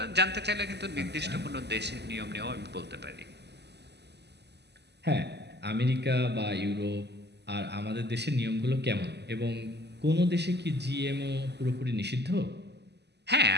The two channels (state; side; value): late; left; 0.49 ms